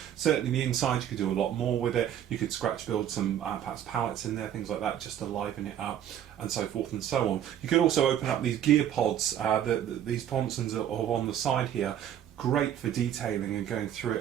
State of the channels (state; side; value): quieter; left; 10.4 dB